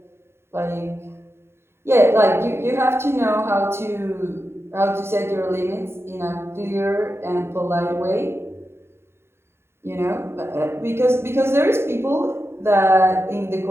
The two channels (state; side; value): late; left; 0.12 ms